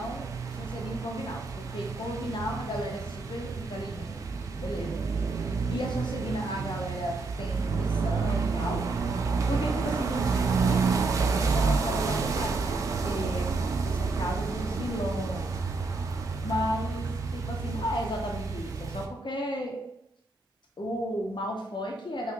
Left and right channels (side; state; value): left; quieter; 3.2 dB